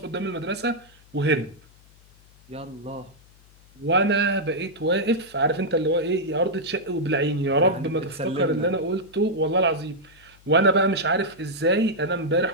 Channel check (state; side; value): noise; left; hum, 27 dB below the sound